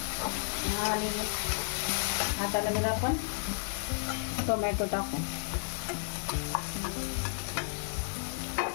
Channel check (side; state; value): right; silent; digital silence